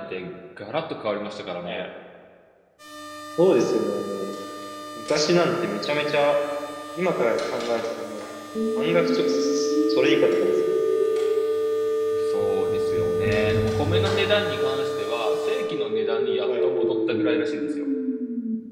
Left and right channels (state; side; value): identical; both; correlation 1.00